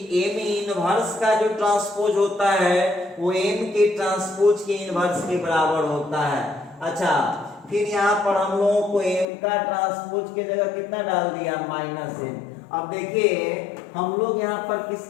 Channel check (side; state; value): right; drops out; at 9.2 s